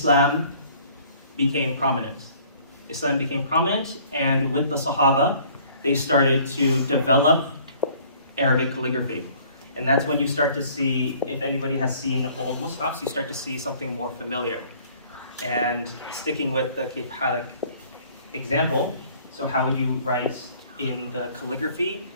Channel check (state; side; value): inverted; both; correlation -0.55